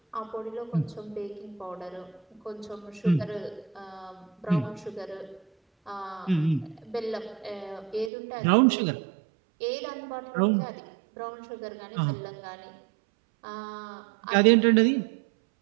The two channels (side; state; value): left; drops out; at 8.1 s